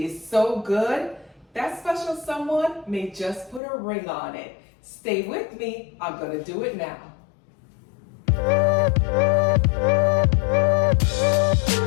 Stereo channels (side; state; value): right; drops out; at 3.6 s